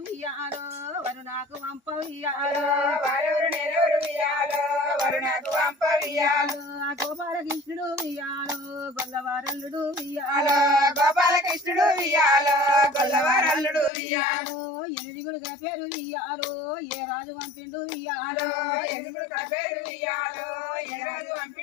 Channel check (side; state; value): right; drops out; at 13.9 s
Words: ఉయ్యాలో వరు నాకు వంప ఉయ్యాలో వారెవరు నేనెవరు ఉయ్యాలో వరు నాకు వంప ఉయ్యాలో గోపాలకృష్ణుడు ఉయ్యాలో గొల్లవారల్లుడు ఉయ్యాలో గోపాలకృష్ణుడు ఉయ్యాలో గొల్లవారల్లుడు ఉయ్యాలో ఎనిమిదిగుడు గల పేరు ఉయ్యాలో ఏ రాజు వంపిండు ఉయ్యాలో ఎనిమిదిగుడు గల పేరు ఉయ్యాలో ఏ రాజు